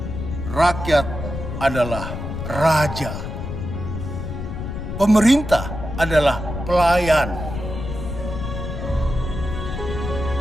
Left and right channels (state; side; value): noise; left; rumble, 6 dB below the sound